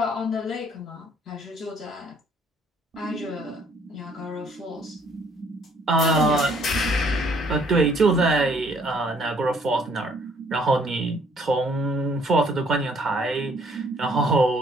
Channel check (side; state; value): both; normal; correlation 0.63